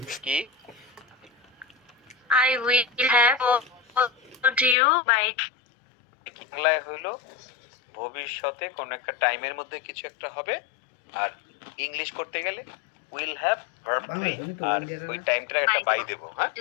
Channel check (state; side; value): drops out; right; at 4.8 s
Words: কি I will have called you by বাংলায় হইলো ভবিষ্যতে কোন একটা টাইমের মধ্যে কিছু একটা হবে, আর ইংলিশ করতে গেলে উইল হ্যাভ ভার্ব 3 আর ওই টাইমটার একটা বাই দেব। হ্যাঁ,